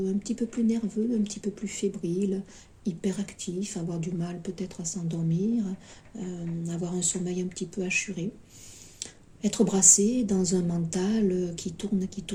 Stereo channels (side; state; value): both; identical; correlation 1.00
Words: petit peu plus nerveux, un petit peu plus fébrile, hyperactif, avoir du mal peut-être à s'endormir, avoir un sommeil un petit peu assuré. Être brassé dans un mental qui tourne